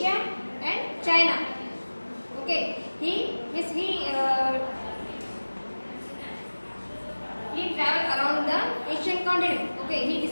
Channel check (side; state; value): both; inverted; correlation -1.00